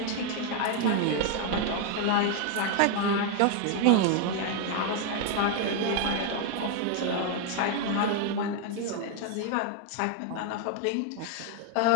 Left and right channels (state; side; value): different; both; correlation 0.01